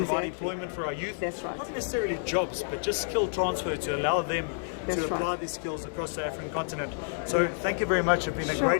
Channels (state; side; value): silent; right; 58 dB below the other